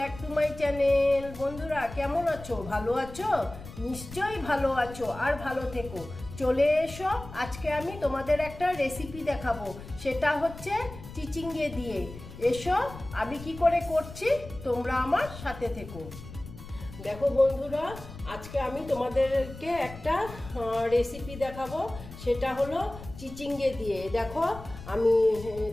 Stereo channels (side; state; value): left; noise; rumble, 14 dB below the sound